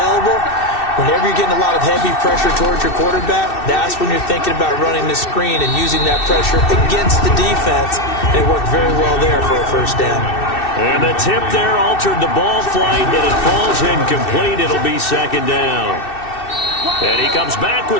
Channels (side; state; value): right; late; 2.6 ms